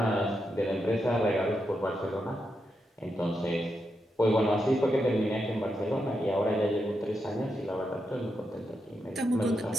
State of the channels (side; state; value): both; normal; correlation 0.85